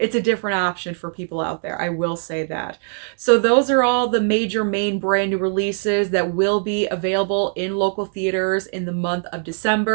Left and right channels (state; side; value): silent; left; 55 dB below the other